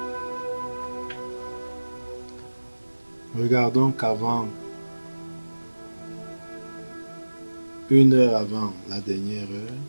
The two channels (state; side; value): inverted; both; correlation -1.00